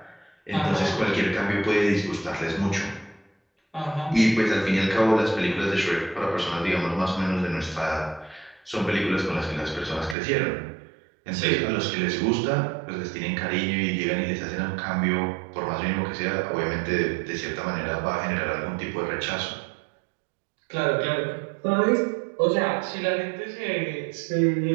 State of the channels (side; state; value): left; drops out; at 10.2 s